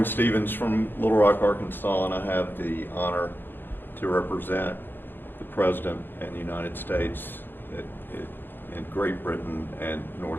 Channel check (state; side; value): late; right; 0.098 ms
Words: Stevens from Little Rock, Arkansas, and I have the honor to represent the President and the United States in Great Britain and